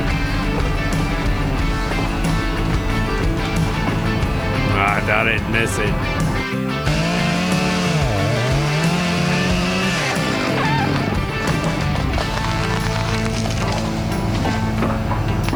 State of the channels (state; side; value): noise; right; hiss, 27 dB below the sound